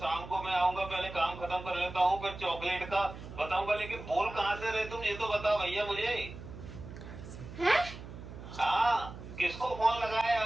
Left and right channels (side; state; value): right; noise; hum, 13 dB below the sound